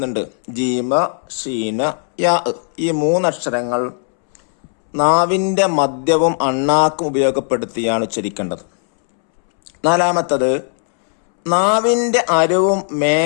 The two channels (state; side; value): silent; right; 68 dB below the other